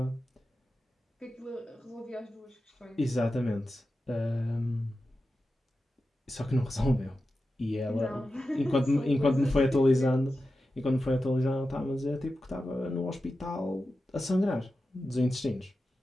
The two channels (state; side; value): normal; both; correlation 0.92